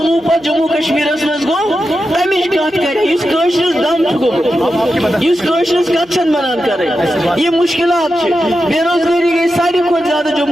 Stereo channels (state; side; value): noise; right; hum, 28 dB below the sound